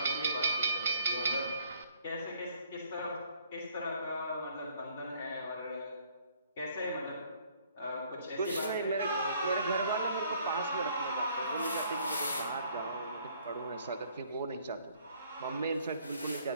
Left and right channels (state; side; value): inverted; both; correlation -0.63